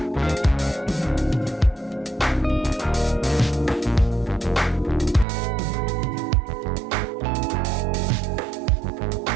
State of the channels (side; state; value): left; drops out; at 5.2 s